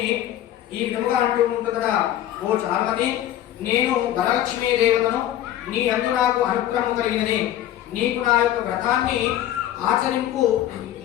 ఈ విధముగా అంటూ ఉంటుందట, ఓ చారుమతి, నేను వరలక్ష్మీ దేవతను, నీ అందు నాకు అనుగ్రహం కలిగినని, నీకు నా యొక్క వ్రతాన్ని ఆచరింపు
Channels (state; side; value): quieter; right; 12.3 dB